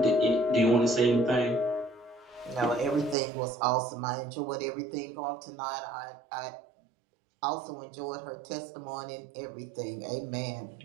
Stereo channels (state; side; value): drops out; left; at 3.2 s